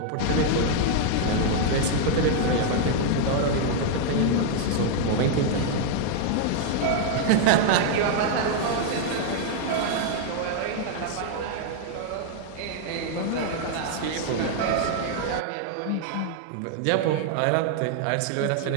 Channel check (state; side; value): different; both; correlation 0.00